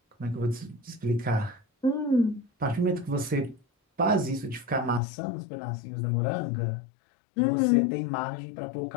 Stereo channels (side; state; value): right; drops out; at 5.0 s